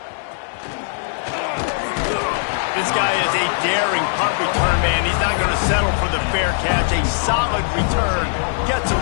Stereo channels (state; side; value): silent; right; digital silence